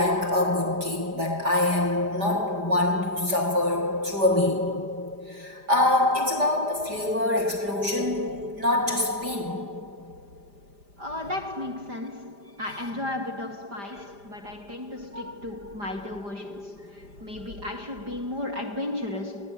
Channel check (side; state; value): left; late; 5.0 ms